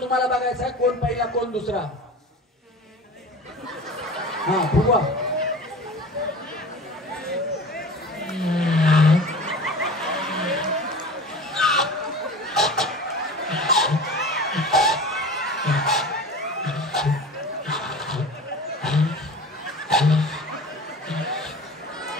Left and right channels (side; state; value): both; normal; correlation 0.36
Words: तुम्हाला बघायचा आहे, कोण पहिला कोण दुसरा. हा फुगवा.